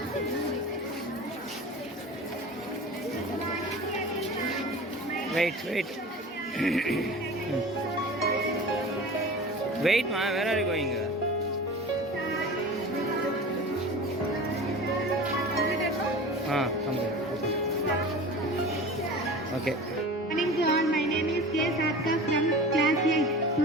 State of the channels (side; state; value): both; normal; correlation 0.36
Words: Wait. Wait, ma, where are you going? Come here. Okay. Good morning to all. My name is K. Satka from class 8.